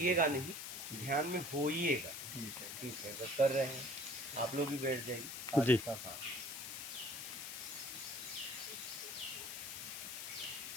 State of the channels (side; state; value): left; noise; hiss, 7 dB below the sound